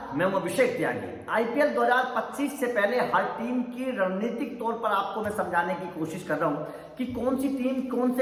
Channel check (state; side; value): identical; both; correlation 1.00